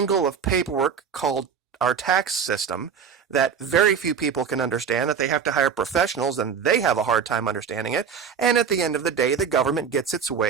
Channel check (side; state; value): left; quieter; 6.9 dB